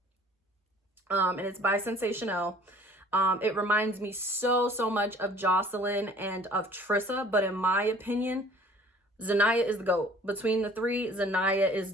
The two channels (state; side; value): normal; both; correlation 0.52